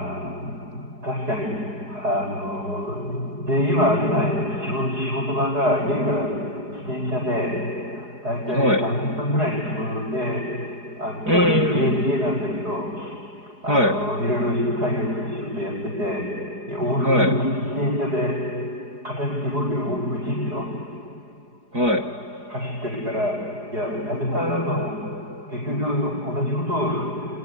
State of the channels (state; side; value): late; left; 4.8 ms